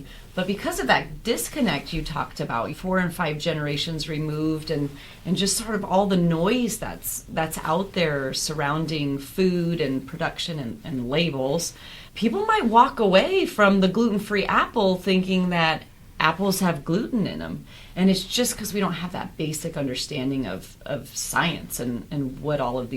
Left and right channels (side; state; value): both; identical; correlation 1.00